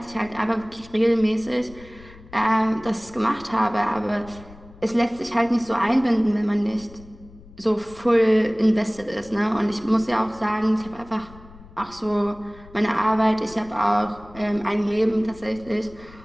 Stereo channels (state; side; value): noise; left; rumble, 21 dB below the sound